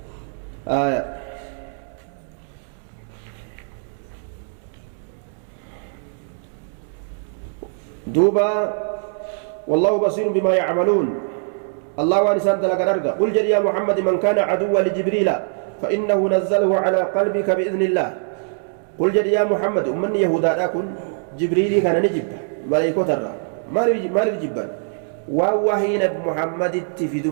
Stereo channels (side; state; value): left; silent; 64 dB below the other